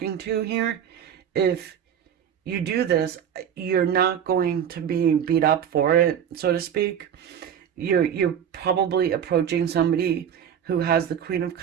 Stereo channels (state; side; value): quieter; left; 8.8 dB